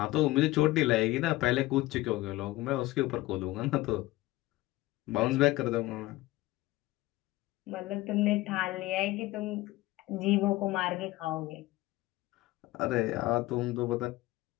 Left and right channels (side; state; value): right; quieter; 18.6 dB